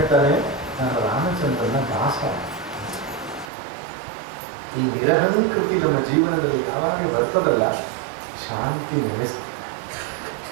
ನಾನು ರಾಮಚಂದ್ರನ ದಾಸ. ಈ ನಿರಹಂಕೃತಿ ನಮ್ಮ ಜೀವನದಲ್ಲಿ ಯಾವಾಗ ಬರ್ತದಲ್ಲ, ಶಾಂತಿ ನೆಲೆಸ್ತದೆ.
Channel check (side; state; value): left; drops out; at 3.5 s